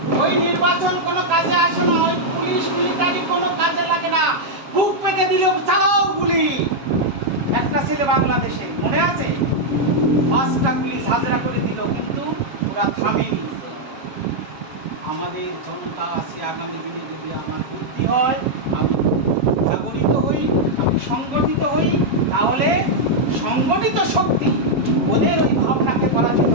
ওই নির্বাচন কোনো কাজে আসে না, ওই পুলিশ মিলিটারি কোনো কাজে লাগে না, বুক পেতে দিল চালাও গুলি। একটা ছেলে বাংলাদেশে মনে আছে 5টা পুলিশ হাজরা করে দিল, কিন্তু ওরা থামেনি। আমাদের জনতা আছে, আগামী দিনে যদি আমার বুদ্ধি হয়, আমি জাগরিত হই, আমি সংগঠিত হই, তাহলে সংগঠিত শক্তি ওদের ওই ভাবনাকে পরাজিত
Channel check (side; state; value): left; late; 7.3 ms